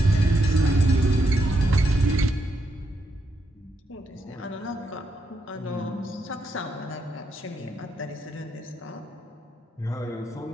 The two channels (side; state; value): both; normal; correlation 0.80